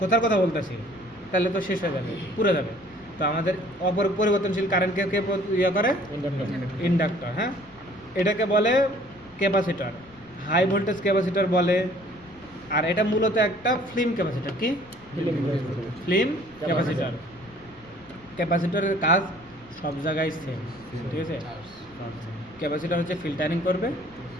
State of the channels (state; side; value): noise; left; rumble, 25 dB below the sound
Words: কোথার কথা বলতেছি, তাহলে তো শেষ হয়ে যাবে, পুড়ে যাবে। তো আমাদের পরিবর্তনশীল কারেন্টকে কে ইয়ে করে? ইন্ডাক্টর। হ্যাঁ, এটাকে বলে ক্যাপাসিটর, হাই ভোল্টেজ ক্যাপাসিটর বলে। আর এটা মূলত একটা ফিল্ম ক্যাপাসিটর। কি? Film capacitor. ক্যাপাসিটরের কাজ সব জায়গায় সেম, ঠিক আছে? ক্যাপাসিটর হচ্ছে ফিল্টারিং করবে,